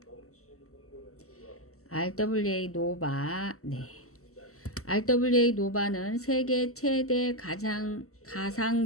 RWA 노바, RWA 노바는 세계 최대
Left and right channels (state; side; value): late; right; 0.64 ms